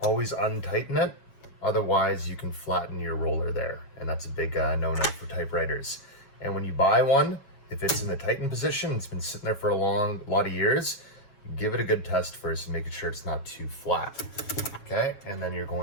always untighten it. Otherwise you can flatten your roller there. And that's a big no-no for typewriters. And when you buy one, if it's in the tightened position, it's been sitting there for a lot of years, give it a good test first and make sure it's not too flat. Okay, and then you're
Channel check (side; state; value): right; late; 7.5 ms